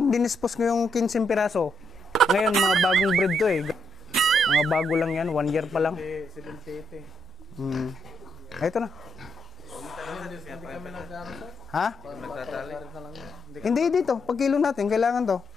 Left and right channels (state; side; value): normal; both; correlation 0.78